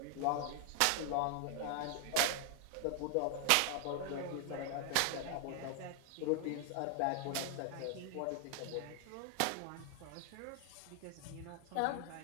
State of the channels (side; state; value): both; different; correlation 0.00